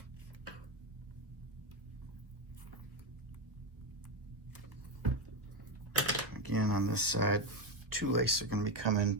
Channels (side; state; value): left; late; 1.5 ms